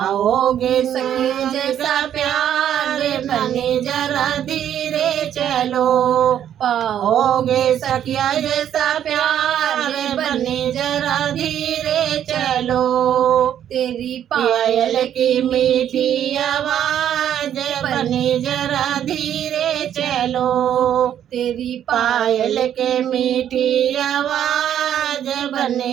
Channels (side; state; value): left; quieter; 10.2 dB